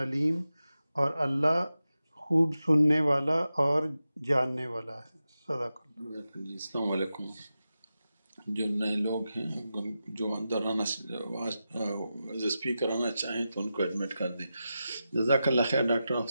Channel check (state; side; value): inverted; both; correlation -0.91